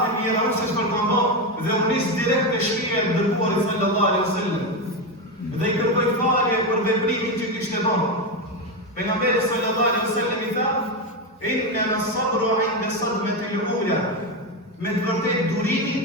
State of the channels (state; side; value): normal; both; correlation 0.12